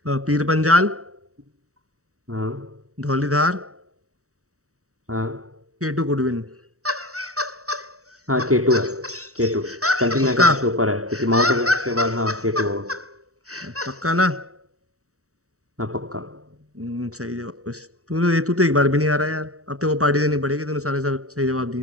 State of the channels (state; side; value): late; left; 0.65 ms